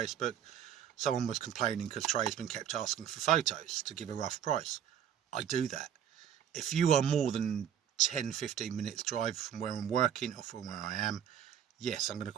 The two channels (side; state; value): left; quieter; 9.3 dB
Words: someone was complaining because tradesmen kept asking for photos to give a rough price. I do that. If you are more than 10-15 minutes drive from where I'm working or from where I am, yes, I'm going to